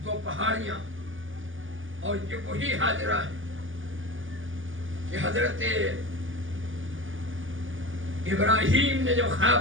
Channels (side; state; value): left; late; 0.58 ms